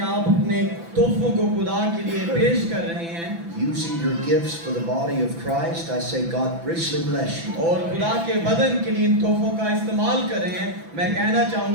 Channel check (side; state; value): left; late; 6.0 ms